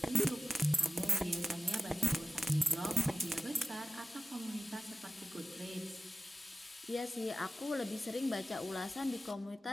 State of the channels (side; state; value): both; normal; correlation 0.88